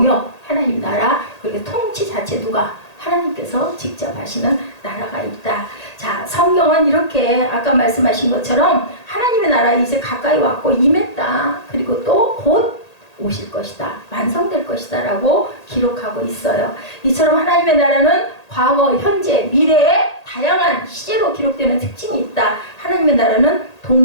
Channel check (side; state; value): right; late; 1.8 ms